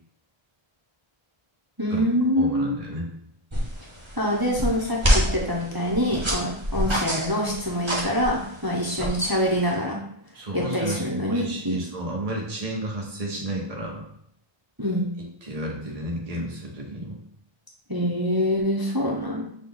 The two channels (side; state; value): left; late; 1.0 ms